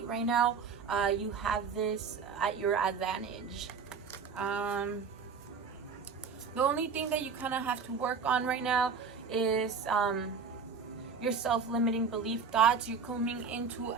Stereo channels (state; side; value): quieter; left; 5.6 dB